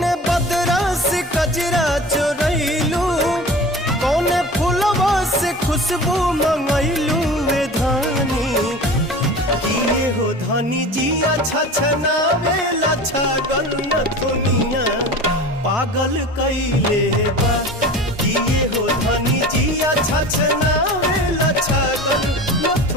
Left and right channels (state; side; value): normal; both; correlation 0.36